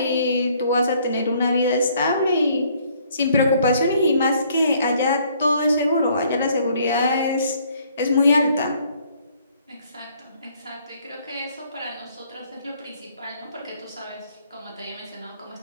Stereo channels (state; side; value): inverted; both; correlation -0.63